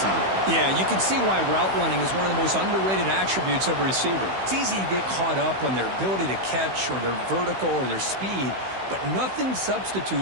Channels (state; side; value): late; left; 16 ms